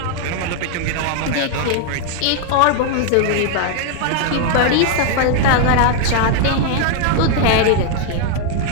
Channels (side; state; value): both; different; correlation 0.00